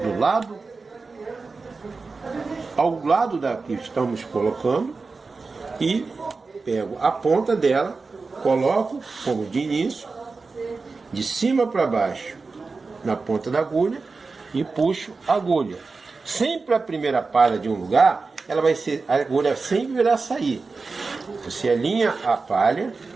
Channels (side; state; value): left; quieter; 4.2 dB